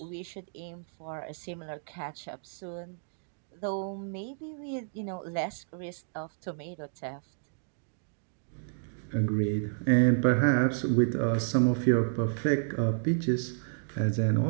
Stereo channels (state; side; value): silent; left; digital silence